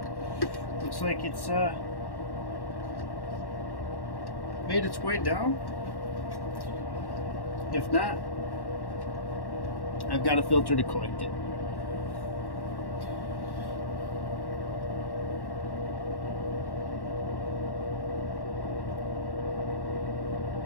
looks like it's made its way down. If not, I've got a filter to collect it.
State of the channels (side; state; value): right; late; 1.1 ms